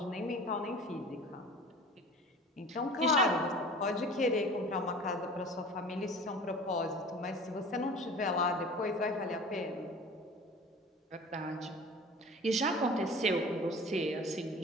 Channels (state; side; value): normal; both; correlation 0.41